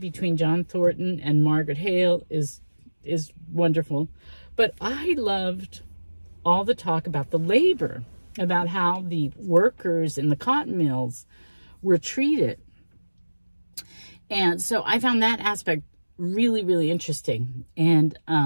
John Thornton and Margaret Hale is wonderful. But I loved all the talk about the labor, about how the workers in the cotton mills were treated. And so I found that aspect really, really interesting. And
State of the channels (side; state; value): both; inverted; correlation -1.00